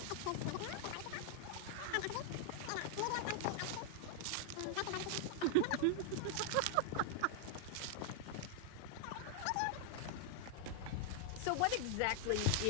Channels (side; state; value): both; different; correlation 0.00